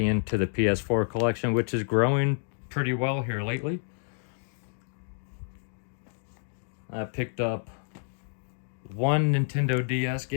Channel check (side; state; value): right; silent; digital silence